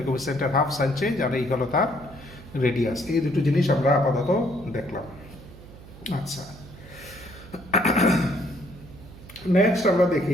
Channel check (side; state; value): right; noise; hum, 18 dB below the sound